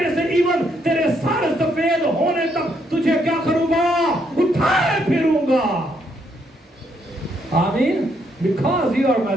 से, इवन तेरे सर सफेद होने तक तुझे क्या करूंगा? उठाए फिरूंगा। आमीन। Because you are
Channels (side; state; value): both; normal; correlation 0.74